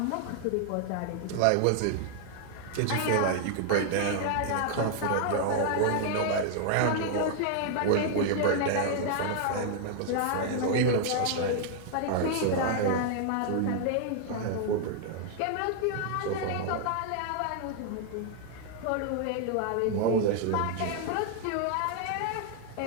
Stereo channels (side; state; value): both; different; correlation 0.00